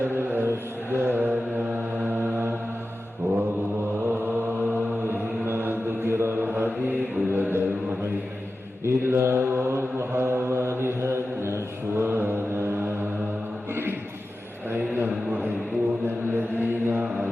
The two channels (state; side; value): normal; both; correlation 0.93